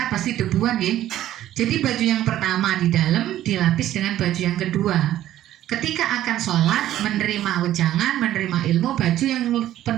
pasti debuan ya. Jadi baju yang pertama di dalam dilapis dengan baju yang kedua. Ketika akan sholat, menerima wejangan, menerima ilmu, baju yang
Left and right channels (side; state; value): left; quieter; 13.0 dB